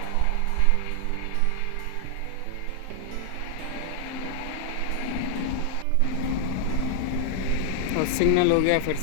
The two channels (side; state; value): both; different; correlation 0.00